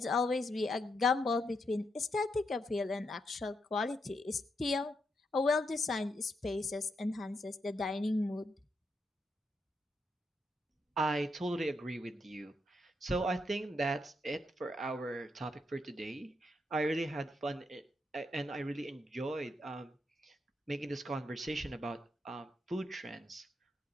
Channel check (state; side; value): normal; both; correlation 0.81